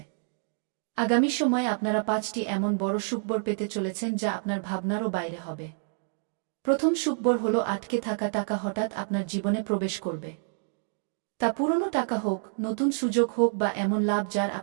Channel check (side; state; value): left; silent; digital silence